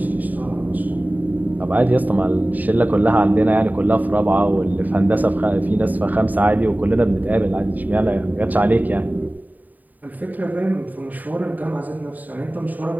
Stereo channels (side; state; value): left; late; 0.083 ms